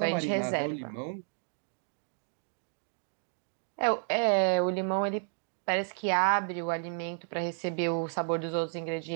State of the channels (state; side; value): silent; left; 57 dB below the other